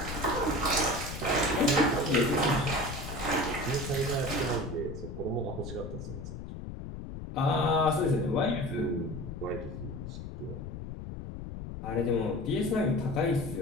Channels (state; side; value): noise; left; rumble, 8 dB below the sound